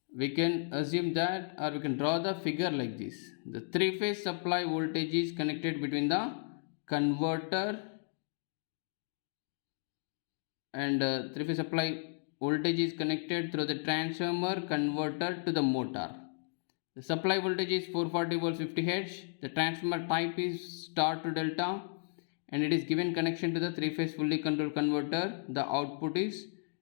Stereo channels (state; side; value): silent; right; digital silence